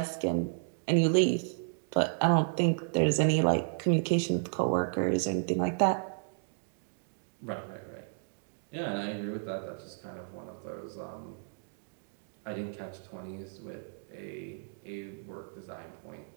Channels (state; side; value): silent; left; digital silence